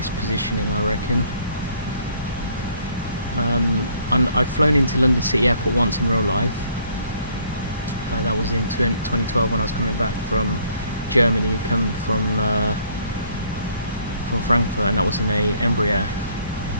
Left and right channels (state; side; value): inverted; both; correlation -0.62